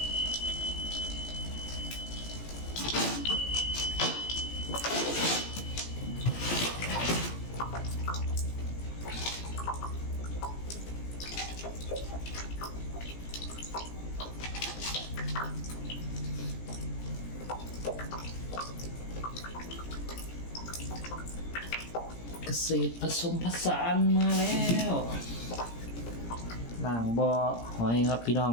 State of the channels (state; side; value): late; right; 17 ms